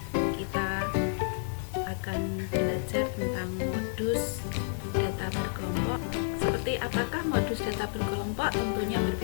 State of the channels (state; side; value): silent; right; 58 dB below the other